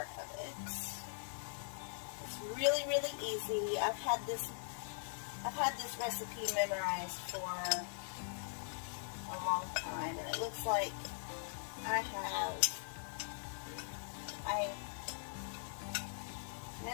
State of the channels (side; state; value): right; silent; 50 dB below the other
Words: of it. It's really, really easy. I've had this recipe memorized for a long time, and it looks like I